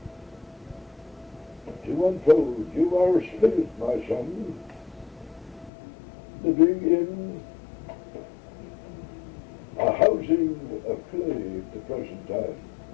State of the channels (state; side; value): drops out; right; at 5.7 s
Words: to unfold. You are a spirit, my son, living in a housing of clay at the present time.